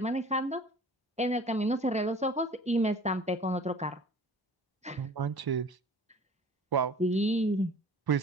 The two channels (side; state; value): both; normal; correlation 0.46